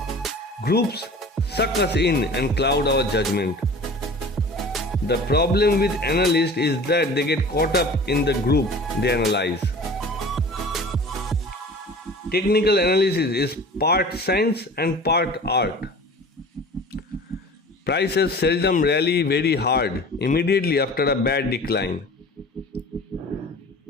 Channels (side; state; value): both; normal; correlation 0.41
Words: Groups suck us in and cloud our judgment. The problem with analysts is that they get caught up in the group they analyze. Technical analysis is part science and part art. Prices seldom rally very hard immediately after a bad decline.